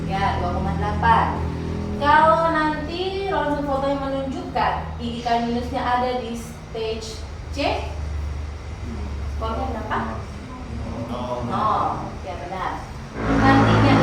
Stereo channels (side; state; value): both; identical; correlation 1.00